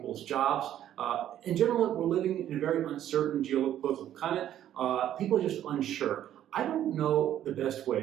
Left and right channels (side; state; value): left; quieter; 11.4 dB